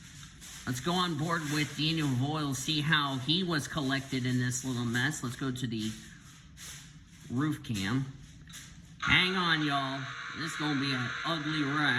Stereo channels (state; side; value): identical; both; correlation 1.00